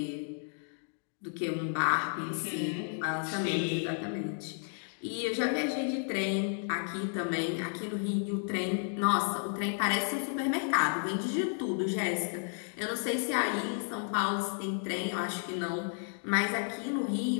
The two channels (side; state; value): right; silent; 56 dB below the other